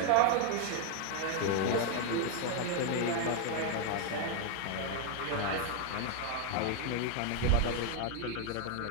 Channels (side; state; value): both; different; correlation 0.00